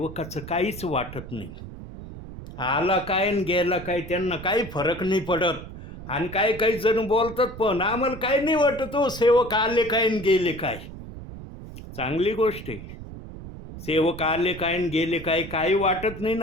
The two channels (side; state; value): right; noise; rumble, 12 dB below the sound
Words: काहीच वाटत नाही. आला काय आणि गेला काय त्यांना काही फरक नाही पडत. आणि काही जण बोलतात पण आम्हाला काही नाही वाटत हो, सेवक आले काय आणि गेले काय. चांगली गोष्ट आहे. सेवक आले काय आणि गेले काय काही वाटत नाही